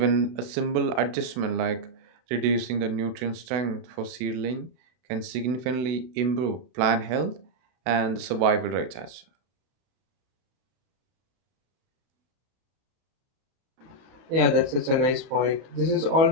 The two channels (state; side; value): late; left; 32 ms